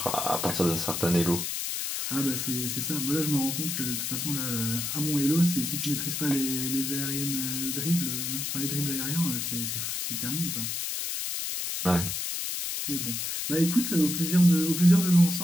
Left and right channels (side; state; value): left; noise; hiss, 2 dB below the sound